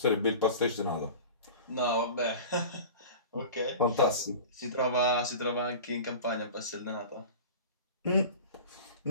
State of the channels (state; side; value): inverted; both; correlation -0.37